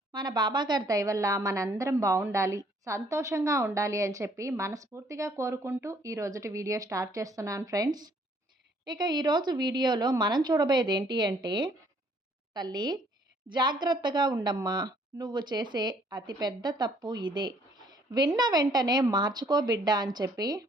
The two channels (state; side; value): normal; both; correlation 0.63